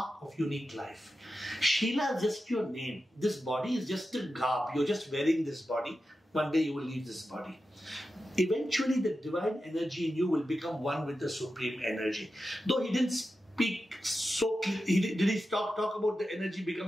of unique life. Sheela is just your name. This body is just a garb. You're just wearing this body. One day you will leave this body. Eventually the divine energy in you will become one with the supreme energy. Though he didn't speak so clearly, did he talk about the energy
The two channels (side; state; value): both; normal; correlation 0.91